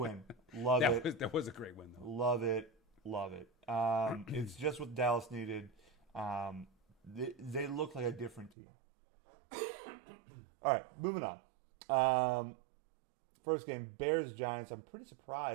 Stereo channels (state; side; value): drops out; left; at 8.5 s